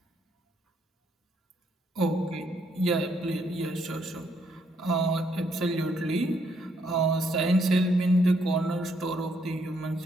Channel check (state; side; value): normal; both; correlation 0.73